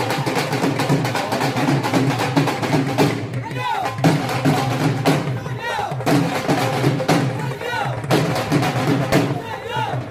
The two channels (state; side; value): identical; both; correlation 1.00